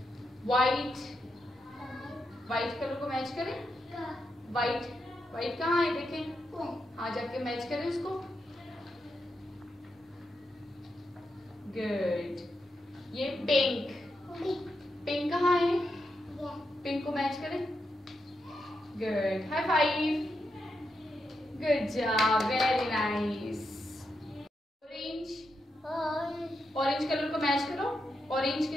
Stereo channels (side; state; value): both; normal; correlation 0.85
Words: व्हाइट, व्हाइट कलर को मैच करें, व्हाइट, व्हाइट कहाँ है देखें, हाँ जाके मैच करें उसको, गुड। ये पिंक, पिंक कहाँ है? पिंक को मैच करें, good, high five, good job, very nice. Orange, orange colour को मैच करो ऑरेंज